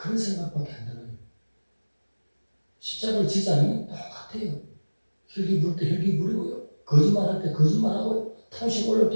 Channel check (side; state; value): both; inverted; correlation -1.00